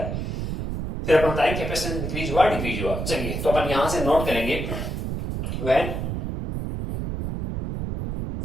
फिर अपन बताएंगे कैपेसिटेंस इंक्रीज हुआ डिक्रीज हुआ। चलिए तो अपन यहां से नोट करेंगे, व्हेन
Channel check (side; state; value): right; noise; rumble, 3 dB below the sound